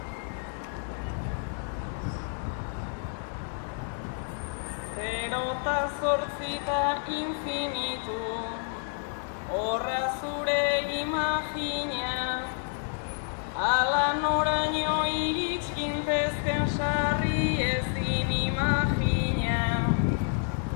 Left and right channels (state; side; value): silent; right; 58 dB below the other